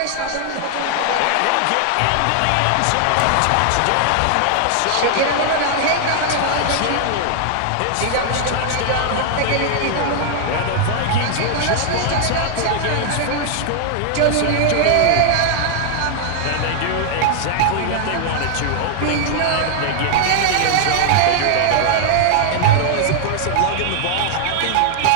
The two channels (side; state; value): both; different; correlation 0.00